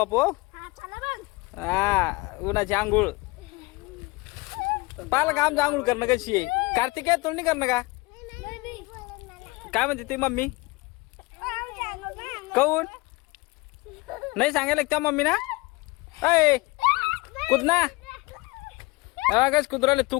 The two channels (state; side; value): quieter; right; 23.7 dB